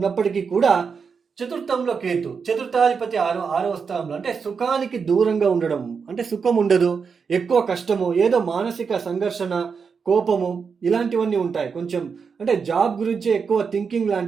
కూడా చతుర్థంలో కేతు, చతుర్థాధిపతి ఆరవ స్థానంలో, అంటే సుఖానికి దూరంగా ఉండడం, అంటే సుఖం ఉండదు, ఎక్కువ కష్టము, ఏదో మానసిక సంఘర్షణ, కోపము ఇలాంటివన్నీ ఉంటాయి. కొంచెం అంటే జాబ్ గురించి ఎక్కువ థింకింగ్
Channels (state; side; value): quieter; left; 5.8 dB